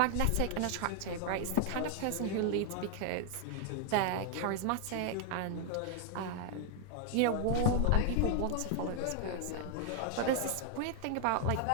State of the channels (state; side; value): different; both; correlation 0.00